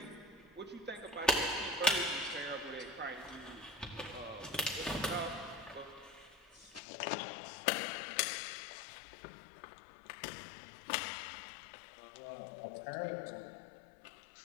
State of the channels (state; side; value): drops out; right; at 6.8 s